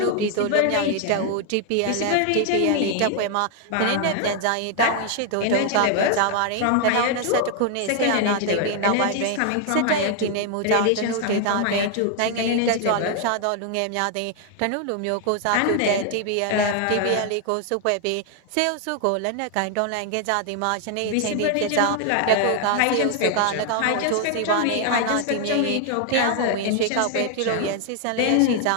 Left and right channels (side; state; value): both; different; correlation 0.00